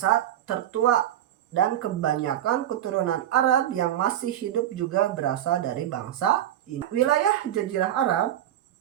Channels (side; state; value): left; quieter; 11.6 dB